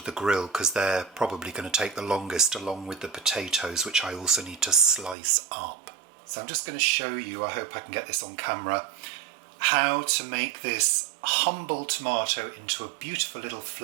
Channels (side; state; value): left; drops out; at 5.2 s